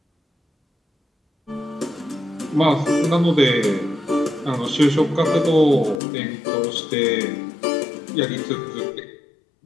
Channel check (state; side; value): drops out; right; at 6.0 s